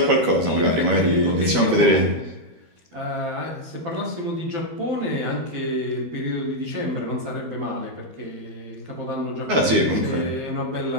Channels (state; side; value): late; left; 13 ms